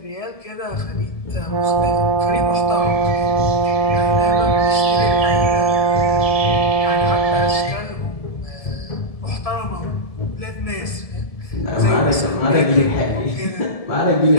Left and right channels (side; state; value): right; late; 1.7 ms